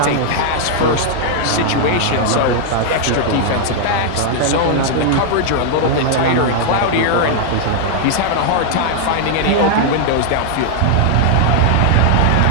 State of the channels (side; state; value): both; different; correlation 0.00